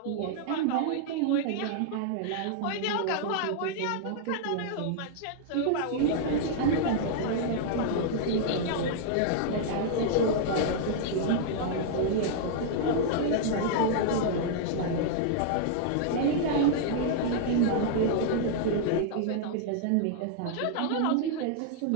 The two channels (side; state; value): both; different; correlation -0.01